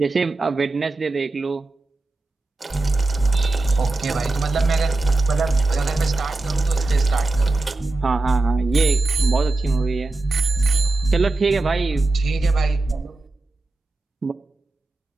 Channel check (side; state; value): left; quieter; 3.1 dB